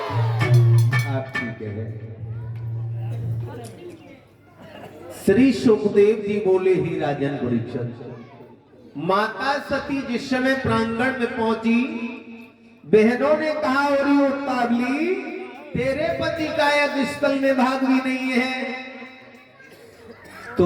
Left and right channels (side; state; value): both; identical; correlation 1.00